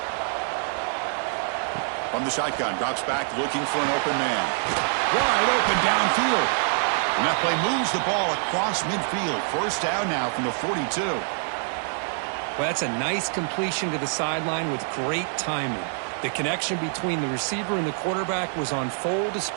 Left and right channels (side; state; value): left; silent; 61 dB below the other